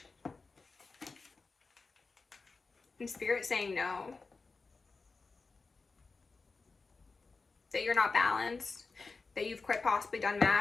And Spirit saying no. That you're not balanced. That you've quite possibly done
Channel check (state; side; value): quieter; right; 4.2 dB